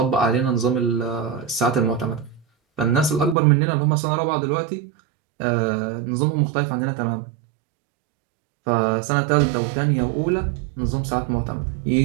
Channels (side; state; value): left; drops out; at 3.4 s